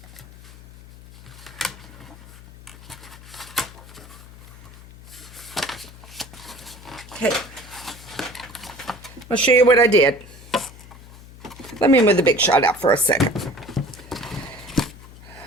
Okay. I'll show you what I did. Let me move the Big Shot out for a second.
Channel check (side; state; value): left; noise; hum, 19 dB below the sound